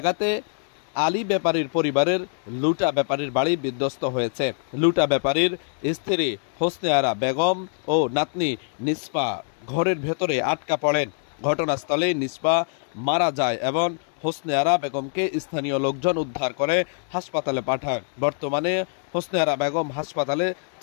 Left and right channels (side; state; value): right; silent; digital silence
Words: আলী ব্যাপারীর পরিবারের লুটা ব্যাপারীর বাড়ি বিধ্বস্ত হয়েছে। লুটা ব্যাপারীর স্ত্রী হোসনে আরা বেগম ও নাতনি নিষ্পা ঘরের ভেতরে আটকা পড়েন। ঘটনাস্থলে নিষ্পা মারা যায় এবং হোসনে আরা বেগমকে স্থানীয় লোকজন উদ্ধার করে হাসপাতালে পাঠায়। বর্তমানে হোসনে আরা বেগম হাসপাতালে